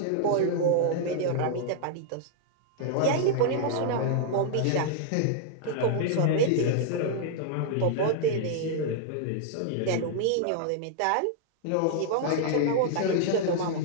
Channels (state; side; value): different; both; correlation -0.01